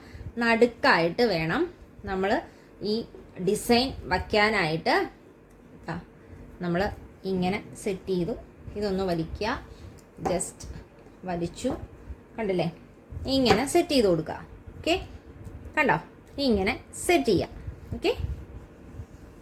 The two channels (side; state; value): both; identical; correlation 1.00